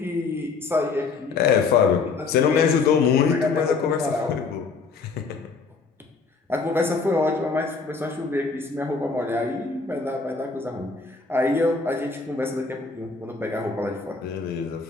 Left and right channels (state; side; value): quieter; right; 4.6 dB